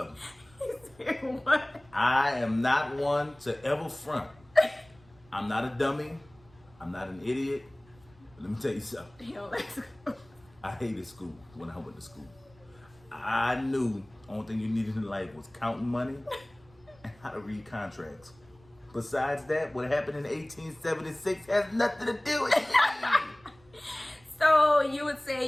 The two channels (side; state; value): right; noise; rumble, 28 dB below the sound